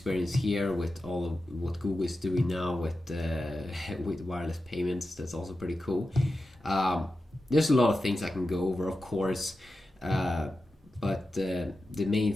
here with all of what Google is doing now with with wireless payments. That's also pretty cool. There's a lot of things I can go over, of course, but the main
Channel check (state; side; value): normal; both; correlation 0.92